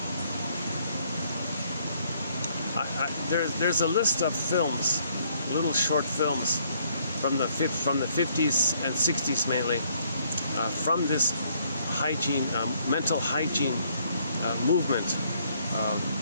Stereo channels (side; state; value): both; inverted; correlation -0.67